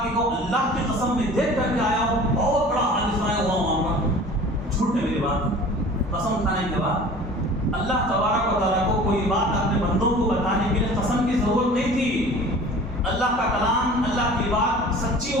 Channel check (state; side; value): normal; both; correlation 0.43